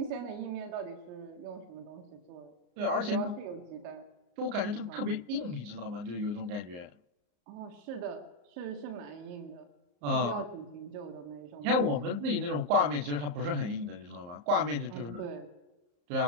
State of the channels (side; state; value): left; late; 34 ms